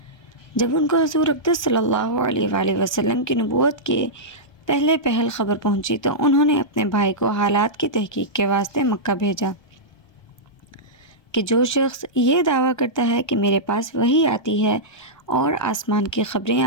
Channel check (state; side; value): late; right; 1.2 ms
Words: جب ان کو حضور اقدس صلی اللہ علیہ وآلہ وسلم کی نبوت کے پہل خبر پہنچی تو انہوں نے اپنے بھائی کو حالات کی تحقیق کے واسطے مکہ بھیجا کہ جو شخص یہ دعویٰ کرتا ہے کہ میرے پاس وحی آتی ہے اور آسمان کی خبریں